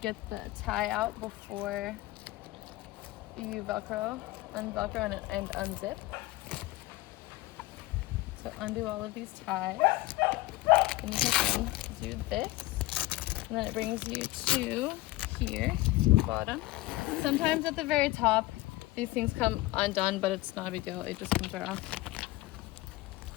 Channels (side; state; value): right; quieter; 19.0 dB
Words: the tie out before you unvelcro and unzip. So undo all of these ties, and you can do this, and then it brings you to here, bottom. Sometimes at the very top, these things come undone, but it's not a big deal. It just comes right off.